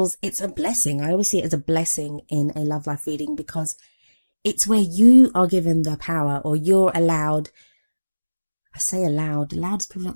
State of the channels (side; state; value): both; inverted; correlation -1.00